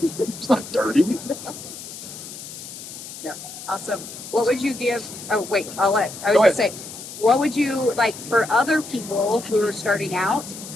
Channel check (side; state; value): left; noise; hiss, 12 dB below the sound